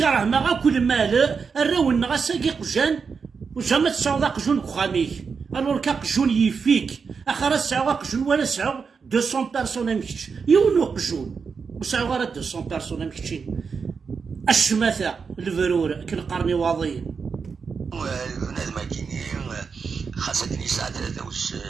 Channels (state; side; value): quieter; left; 5.5 dB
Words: ما كل مال الراون غاساكي قجان وجا تسعود قجون كخاميك الور كقجون يفيك اخر تسعود قجون ولا تسعود 200 بيرسون مكتش يونو قجون وسعود غير 200 بيرسون مكتشين الشماثه الفرور كنقرني واضيين بنادم كيني خاصك نساعد